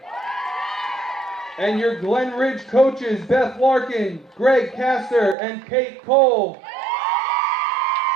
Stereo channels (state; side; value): drops out; left; at 5.4 s